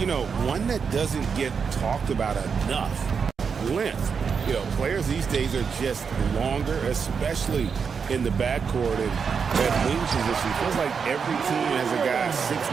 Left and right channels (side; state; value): left; quieter; 6.1 dB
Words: know, one that doesn't get talked about enough, length. You know, players these days are just longer, especially in the backcourt and at wing position. It feels like every team has a guy